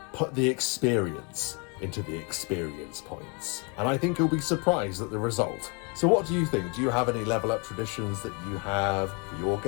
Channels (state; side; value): quieter; right; 33.2 dB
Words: Put the experience into the experience points. And I think you'll be surprised at the result. So what do you think? Do you have any level up traditions that you have for your